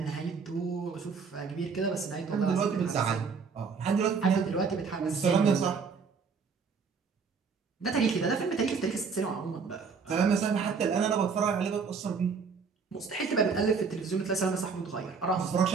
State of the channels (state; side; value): quieter; left; 5.4 dB